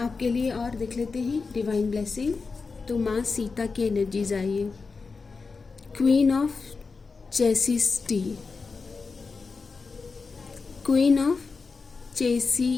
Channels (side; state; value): right; quieter; 4.5 dB